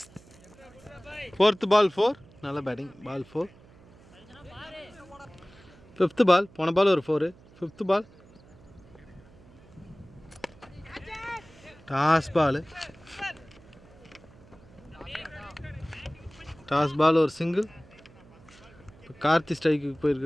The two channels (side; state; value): right; noise; hum, 24 dB below the sound